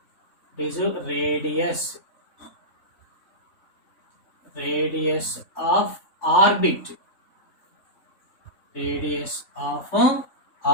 this is radius of orbit, radius of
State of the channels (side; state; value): right; late; 3.6 ms